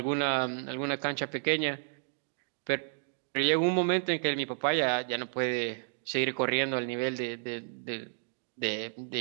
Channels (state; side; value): silent; left; digital silence